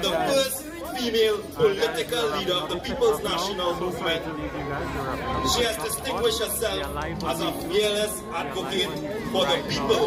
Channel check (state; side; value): identical; both; correlation 1.00